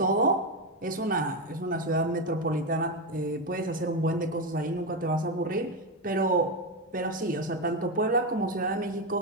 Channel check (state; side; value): normal; both; correlation 0.10